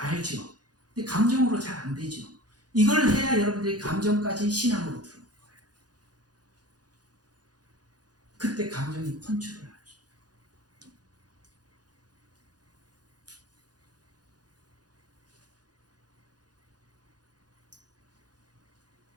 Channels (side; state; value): left; late; 0.69 ms